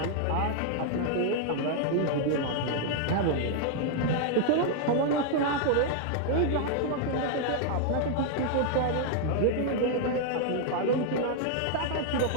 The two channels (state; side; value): different; both; correlation 0.00